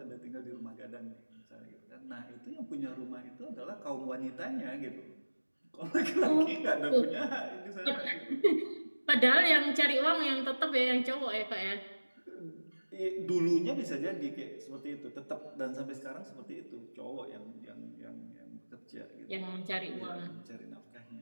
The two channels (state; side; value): inverted; both; correlation -1.00